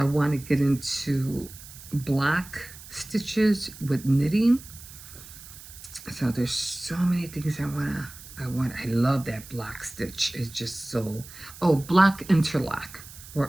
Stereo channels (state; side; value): noise; right; hiss, 17 dB below the sound